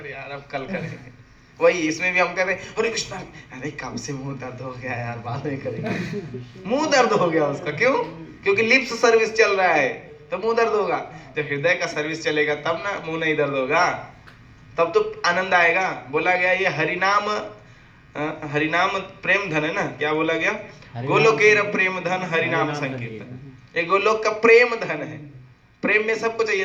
यार अब कल करेंगे। वही इसमें भी हम कहते हैं हरे कृष्णा, अरे कब से मुंह दर्द हो गया यार, बाद में करेंगे। मुंह दर्द हो गया उसका, क्यों? क्योंकि लिप्स सर्विस चल रहा है तो मुंह दर्द होगा। जब हृदय का सर्विस चलेगा तब ना मुंह नहीं दर्द होगा, तब तो आनंद आएगा। बोला गया ये हरिनाम प्रेम धन है ना, क्या बोला गया? गोलोकेर प्रेम धन हरिनाम संकीर्तन। ये गोलोक का प्रेम धन है। प्रेम में सबको चाहिए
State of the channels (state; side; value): identical; both; correlation 1.00